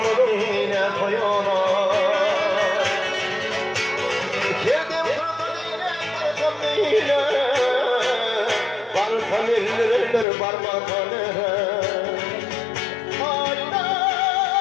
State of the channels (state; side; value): drops out; right; at 10.2 s